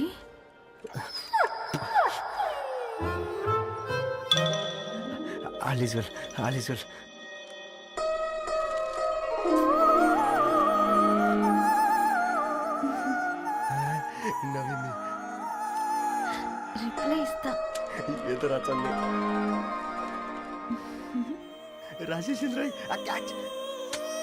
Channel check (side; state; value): both; identical; correlation 1.00